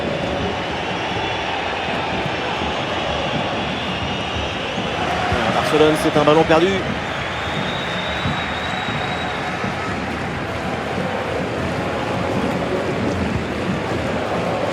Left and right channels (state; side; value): identical; both; correlation 1.00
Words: Barcelone, c'est un ballon perdu.